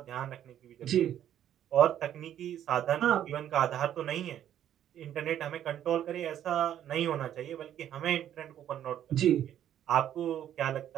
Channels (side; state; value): left; quieter; 10.8 dB